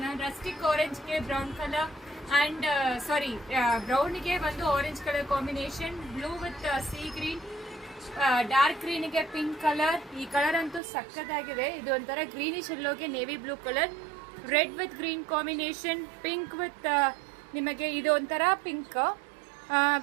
ರಸ್ಟಿಕ್ ಆರೆಂಜ್ ಗೆ ಬ್ರೌನ್ ಕಲರ್ ಅಂಡ್ ಬ್ರೌನ್ ಗೆ ಒಂದು orange colour combination, blue with sea green, dark green ಗೆ ಪಿಂಕ್ ಕಲರ್. ಈ ಕಲರ್ ಅಂತೂ ಸಕ್ಕತ್ತಾಗಿದೆ. ಇದು ಒಂಥರ ಗ್ರೀನಿಶ್ ಎಲ್ಲೋಗೆ navy blue colour, red with green combination, pink with ನಿಮಗೆ ಇದು ಒಂಥರ pink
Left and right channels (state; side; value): drops out; left; at 10.8 s